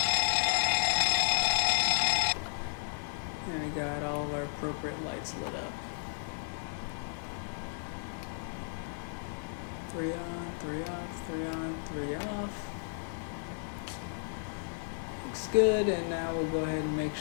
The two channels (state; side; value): silent; right; digital silence